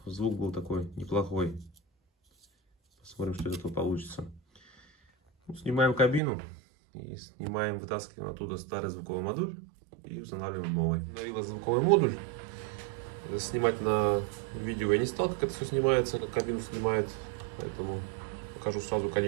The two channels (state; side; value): drops out; left; at 6.2 s